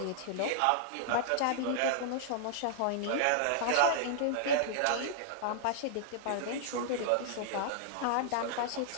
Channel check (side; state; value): both; different; correlation -0.01